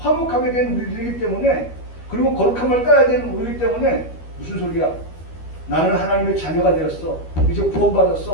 된 우리들이기 때문에, 그리고 거룩함을 따라야 되는 우리이기 때문에, 무슨 소리야? 나는 하나님의 자녀가 되었어. 이제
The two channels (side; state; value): right; late; 12 ms